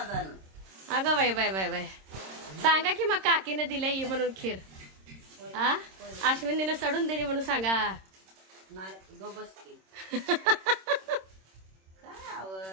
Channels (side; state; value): left; late; 26 ms